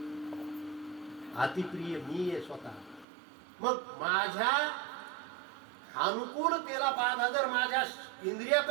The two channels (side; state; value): left; drops out; at 3.1 s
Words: अतिप्रिय मी आहे स्वतः. मग माझ्या अनुकूलतेला बाधा जर माझ्या